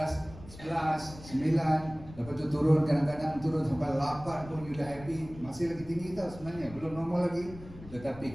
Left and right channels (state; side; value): noise; left; rumble, 17 dB below the sound